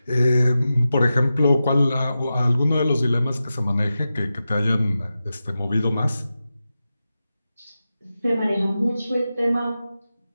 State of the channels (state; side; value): inverted; both; correlation -0.92